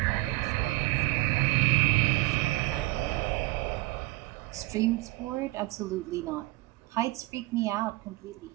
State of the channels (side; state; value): left; quieter; 21.6 dB